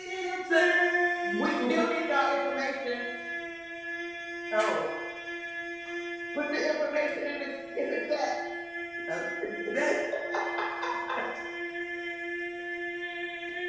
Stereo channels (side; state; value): right; noise; rumble, 29 dB below the sound